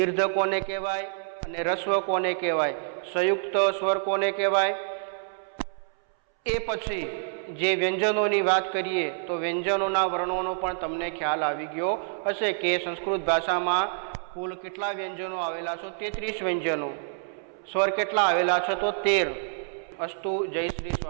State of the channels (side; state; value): left; silent; 60 dB below the other